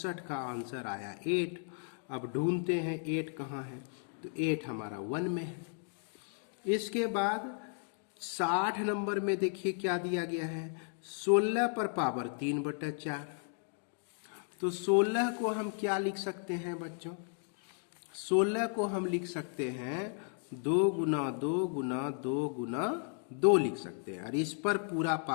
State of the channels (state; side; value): silent; right; 55 dB below the other